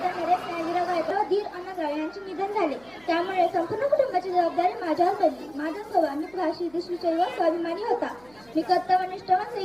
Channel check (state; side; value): noise; right; hum, 28 dB below the sound